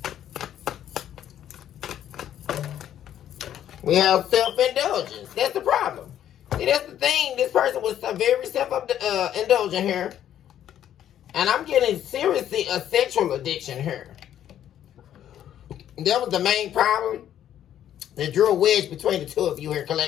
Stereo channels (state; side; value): quieter; right; 10.8 dB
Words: We have self-indulgence. That's the problem. See, that's the thing. This person was very self-indulgent here. And I'm getting seriously a sexual addiction here. That was the main problem that drew a wedge between the two of you here,